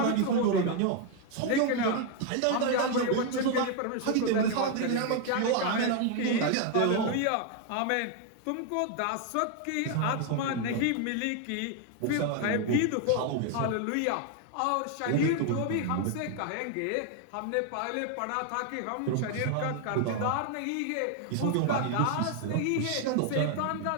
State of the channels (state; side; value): different; both; correlation 0.01